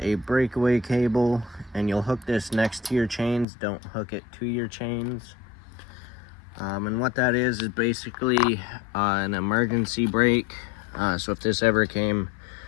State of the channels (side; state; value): right; drops out; at 3.5 s